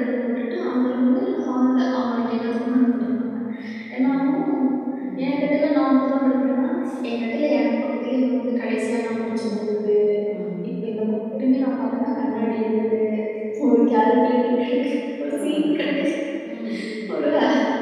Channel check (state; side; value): identical; both; correlation 1.00